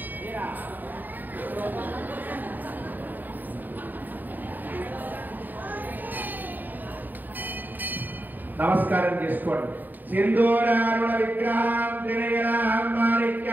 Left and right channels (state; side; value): late; left; 0.088 ms